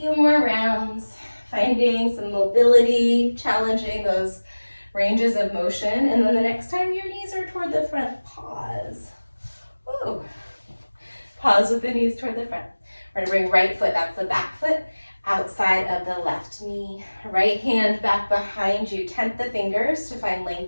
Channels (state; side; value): inverted; both; correlation -1.00